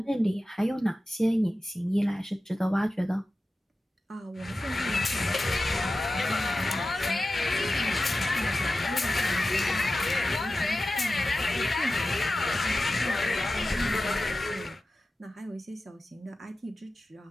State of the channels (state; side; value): normal; both; correlation 0.94